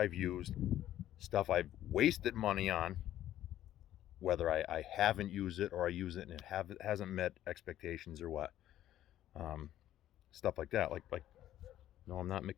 used, stuff I've wasted money on, whether I haven't used it or I use it and it hasn't met expectations or what. Stuff like that. Like, no, I'm not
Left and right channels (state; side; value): quieter; right; 12.7 dB